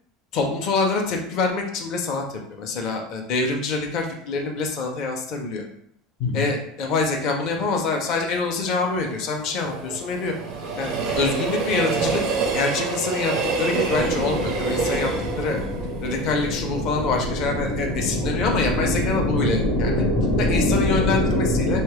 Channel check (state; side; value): normal; both; correlation 0.30